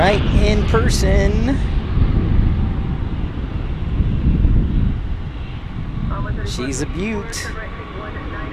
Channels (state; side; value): identical; both; correlation 1.00